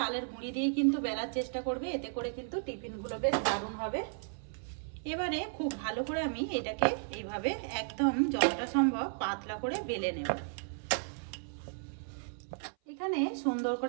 গুঁড়ি দিয়ে কিন্তু বেলার চেষ্টা করবে, এতে করে কিন্তু টিফিনগুলো বেশ দারুণ হবে। এবারে খুব ভালো করে আমি এটাকে এইভাবে একদম যতটা সম্ভব পাতলা করে বেলে নেব। এখানে সুন্দর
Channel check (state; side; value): silent; left; 55 dB below the other